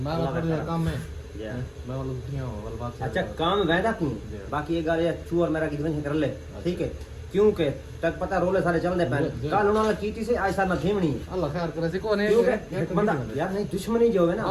मैं थोड़ा काम में मैं वाला दुनिया हो वाला बात। अच्छा काम वैदा क्यों बाकी ये गाल चूर मेरा की कर ले ठीक है क्योंकि तक पता रोले सारे चलदे पैन कल उन्होंने कीती से आज सार ना थीमणी अल्लाह खैर करे से कोने एक बंदा यार नहीं दुश्मनी जो है ना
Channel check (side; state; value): both; identical; correlation 1.00